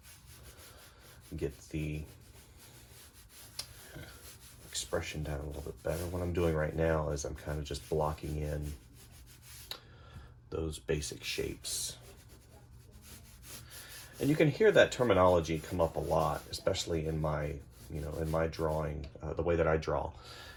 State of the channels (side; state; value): both; identical; correlation 1.00